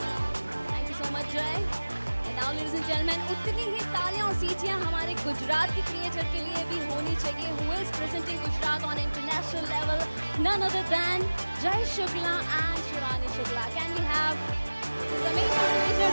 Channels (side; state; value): both; inverted; correlation -1.00